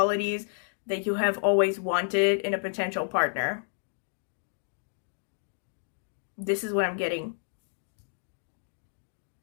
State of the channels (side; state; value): right; silent; digital silence